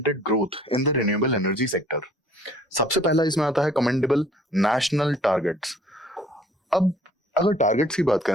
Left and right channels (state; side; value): normal; both; correlation 0.56